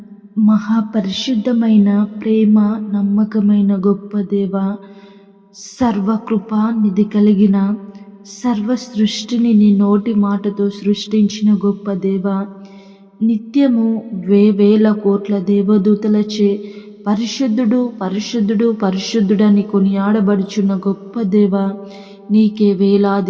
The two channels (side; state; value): both; identical; correlation 1.00